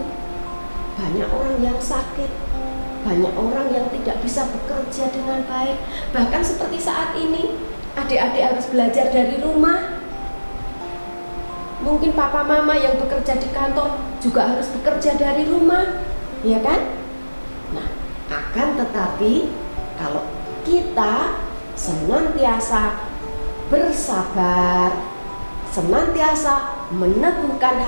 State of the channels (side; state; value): both; inverted; correlation -1.00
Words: Banyak orang yang sakit. Banyak orang yang tidak bisa bekerja dengan baik. Bahkan seperti saat ini, adik-adik harus belajar dari rumah. Mungkin papa mama yang bekerja di kantor juga harus bekerja dari rumah, ya kan? Nah, akan tetapi kalau kita senantiasa bersabar, senantiasa meneguhkan